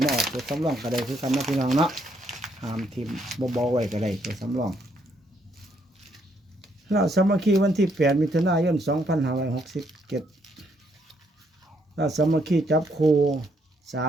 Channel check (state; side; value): normal; both; correlation 0.72